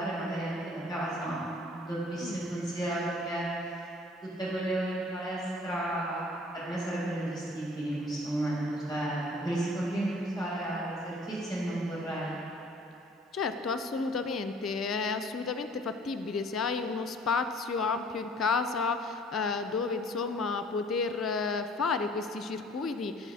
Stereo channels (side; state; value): both; normal; correlation 0.54